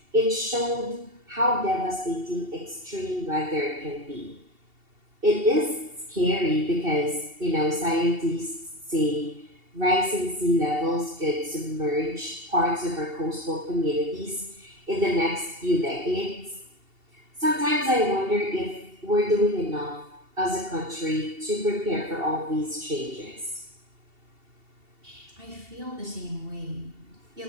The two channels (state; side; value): late; left; 2.7 ms